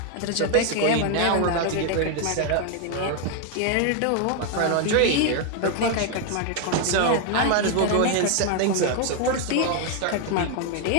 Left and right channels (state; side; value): different; both; correlation 0.01